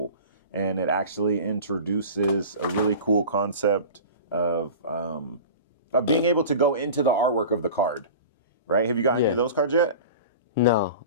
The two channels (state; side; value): inverted; both; correlation -0.36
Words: And it actually introduces a really cool concept of being able to go into the artwork of the card, right? Have you got any of those cards yet? No.